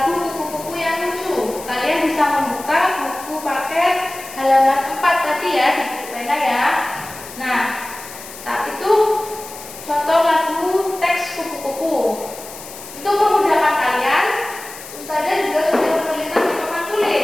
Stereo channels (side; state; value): left; noise; hiss, 14 dB below the sound